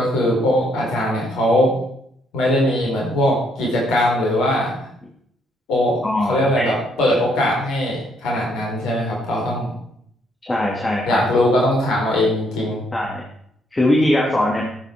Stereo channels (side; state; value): both; normal; correlation 0.72